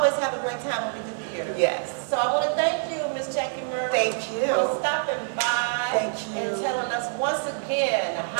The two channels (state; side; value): silent; left; digital silence